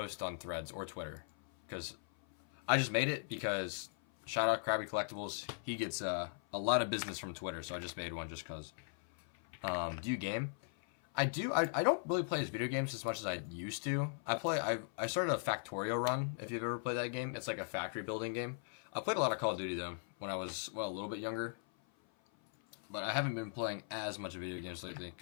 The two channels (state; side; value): silent; right; 52 dB below the other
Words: on Threads or Twitter because I just made it because shout out Krabby Collectibles. He gets a lot of business from Twitter, so I just made one just because. Do you game? I do. I don't really play video games as much as I used to. I started a Factorio run, if you've ever played that game. It's like a factory building game. I played a lot of Call of Duty, though, when I was, a little bit younger. But I haven't been playing as much video games lately,